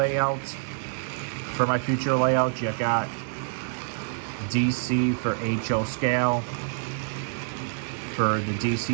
you got DC for HO scale, for the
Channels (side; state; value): left; silent; 60 dB below the other